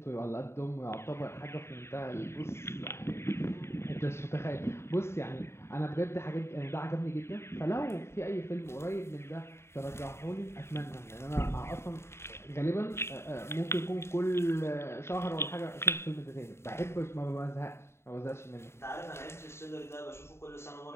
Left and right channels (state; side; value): late; right; 0.13 ms